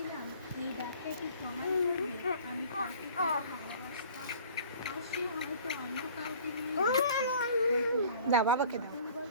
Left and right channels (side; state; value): both; inverted; correlation -0.49